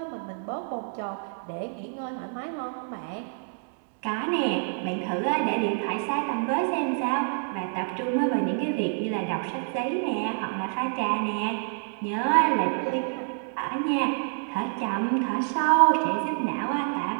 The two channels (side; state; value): left; silent; digital silence